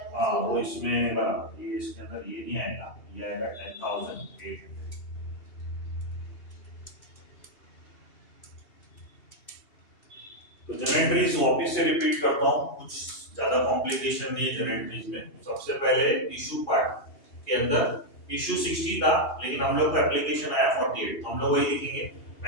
हाँ वो माइनस इसमें बराबर, ये इसके अंदर ये नहीं आएगा, ये आएगा 10,800। तो जनरेटरीज वापस से रिपीट करता हूँ, कुछ ज्यादा कॉम्प्लिकेशन नहीं है जनरेटरीज में। सबसे पहले इशू पार्ट के अंदर इशू 60 था, लेकिन हम लोग को एप्लीकेशन आया 48, तो हम लोग वही लिखेंगे,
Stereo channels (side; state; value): right; late; 2.8 ms